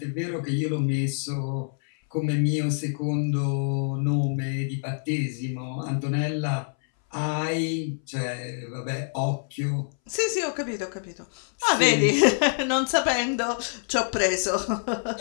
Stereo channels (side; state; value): right; silent; 61 dB below the other